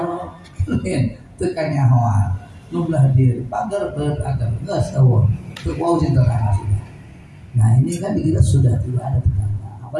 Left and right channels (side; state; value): both; identical; correlation 1.00